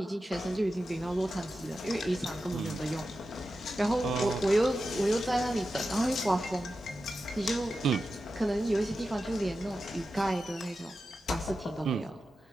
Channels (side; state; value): both; normal; correlation 0.91